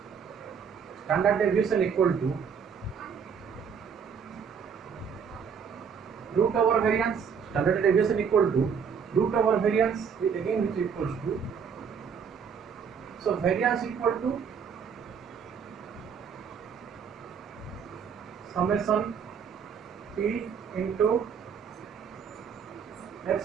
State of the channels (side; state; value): left; quieter; 6.7 dB